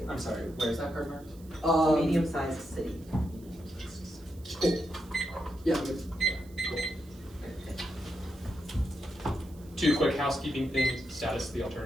I'm sorry, where's that card marked? It's a medium-sized city. Cool. Yeah. Good. 2 quick housekeeping things. Status of the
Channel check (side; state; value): right; noise; hiss, 25 dB below the sound